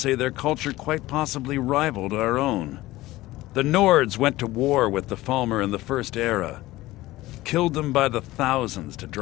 their culture quite possibly rivaled our own. The Nords went to war with the Falmer in the First Era, killed them by the thousands to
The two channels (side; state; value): right; quieter; 17.7 dB